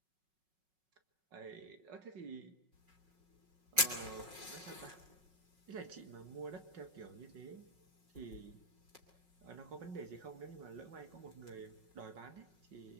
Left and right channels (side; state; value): left; late; 5.4 ms